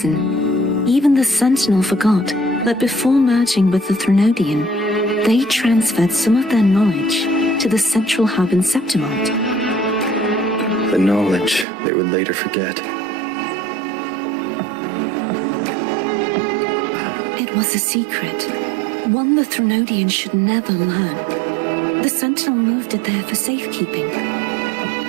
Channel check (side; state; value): left; drops out; at 11.7 s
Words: even the Sentinel forgot that before merging with the Threnodian, they transferred some of their knowledge to the central hub in Septimont. The knowledge they would later forget. It was a secret, one the Threnodian should never learn. The Sentinel moved it there for safekeeping.